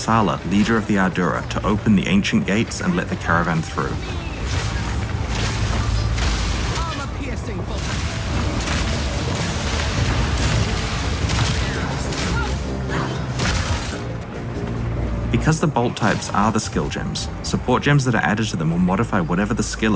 leader of the Ardura, to open the ancient gates and let the caravan through. Armor-piercing bolts. Because the bolt types are the skill gems, support gems that are added to them will modify whatever the skill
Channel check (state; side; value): identical; both; correlation 1.00